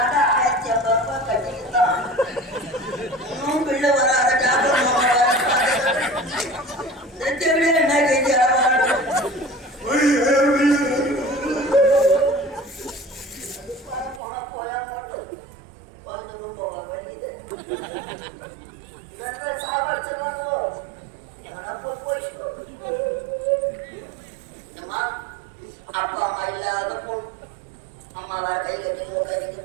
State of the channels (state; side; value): drops out; left; at 14.2 s